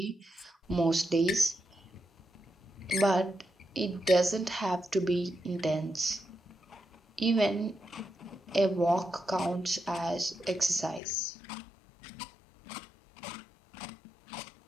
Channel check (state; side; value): drops out; right; at 11.0 s